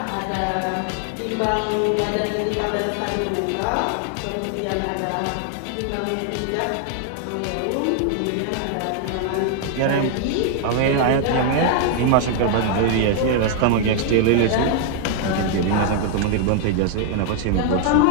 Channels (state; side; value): different; both; correlation 0.00